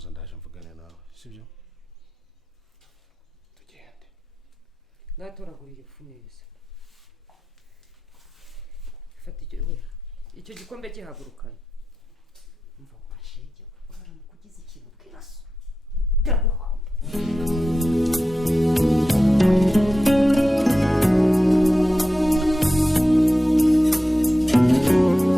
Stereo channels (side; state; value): both; normal; correlation 0.92